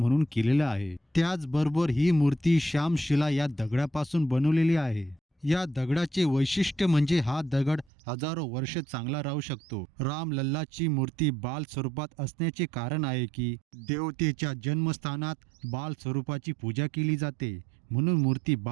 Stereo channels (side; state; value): left; drops out; at 7.9 s